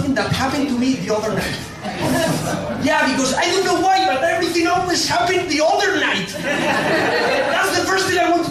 that happened to me the other night. Yeah, because I don't know why, but everything always happened the other night. That's the first thing I want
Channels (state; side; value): identical; both; correlation 1.00